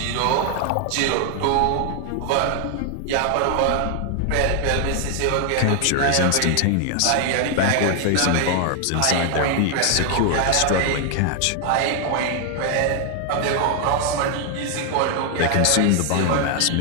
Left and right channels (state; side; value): different; both; correlation 0.00